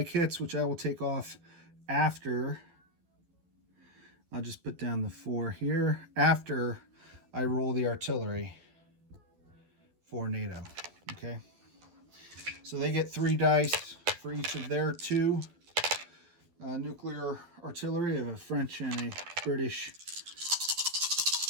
hits, which I will take off after. I'll just put down the 4 here after I roll the artillery for NATO. Okay, so they get 3 dice for each of their 2 nuclear artillery. I have a French and a British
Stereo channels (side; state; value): left; late; 12 ms